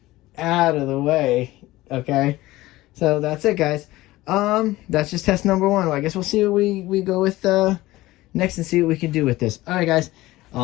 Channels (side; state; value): right; quieter; 17.9 dB